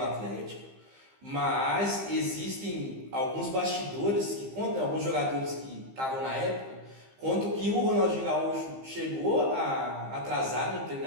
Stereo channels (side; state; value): left; late; 15 ms